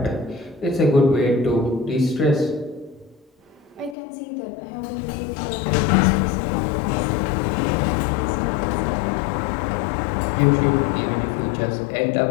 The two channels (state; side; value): drops out; right; at 4.0 s